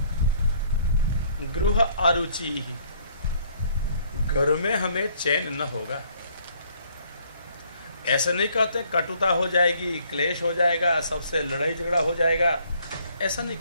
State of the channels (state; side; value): inverted; both; correlation -0.63